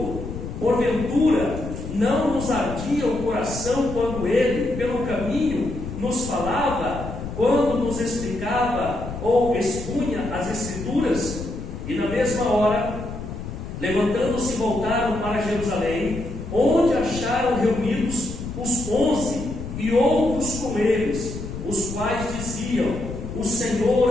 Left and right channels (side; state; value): left; noise; rumble, 8 dB below the sound